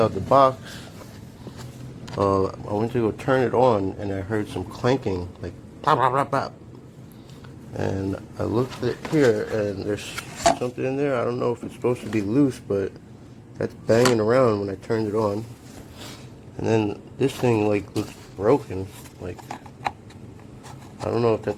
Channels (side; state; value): both; identical; correlation 1.00